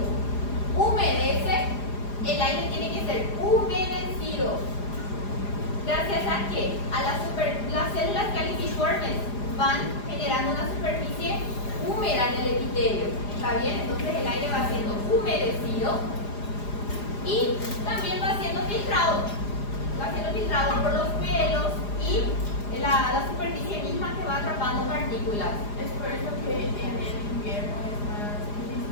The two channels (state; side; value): late; right; 4.9 ms